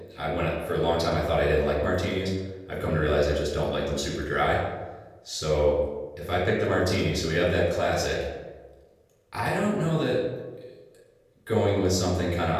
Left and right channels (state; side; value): identical; both; correlation 1.00